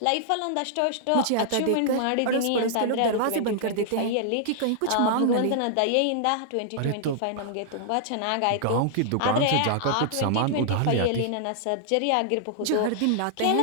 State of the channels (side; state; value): both; different; correlation -0.01